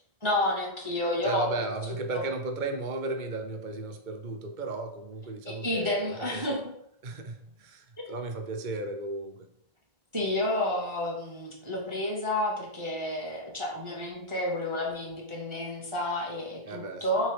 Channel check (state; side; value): late; left; 1.4 ms